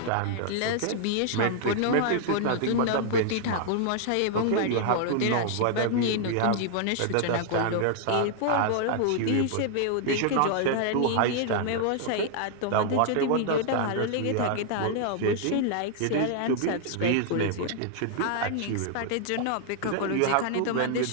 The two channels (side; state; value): both; different; correlation 0.00